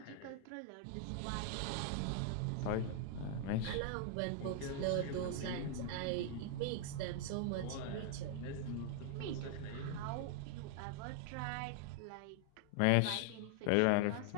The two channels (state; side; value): different; both; correlation 0.00